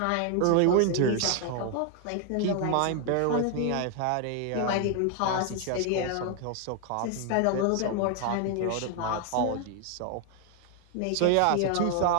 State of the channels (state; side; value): different; both; correlation 0.00